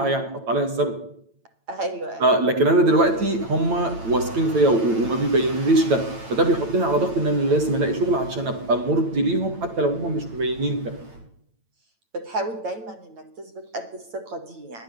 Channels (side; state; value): left; late; 8.9 ms